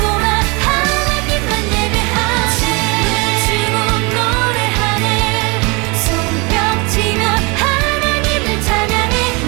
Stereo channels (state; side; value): quieter; left; 28.1 dB